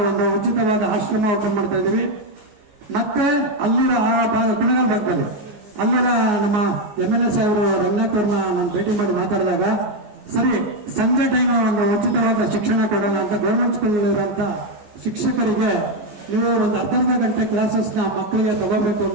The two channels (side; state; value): left; late; 14 ms